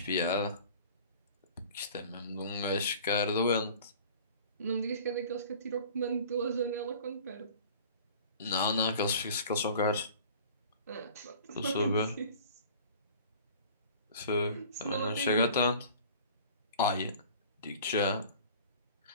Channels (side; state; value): both; inverted; correlation -0.45